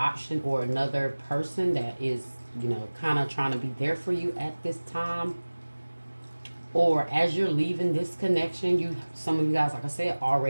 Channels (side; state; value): both; inverted; correlation -1.00